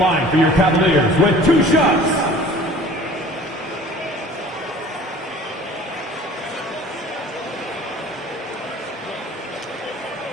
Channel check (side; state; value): both; normal; correlation 0.47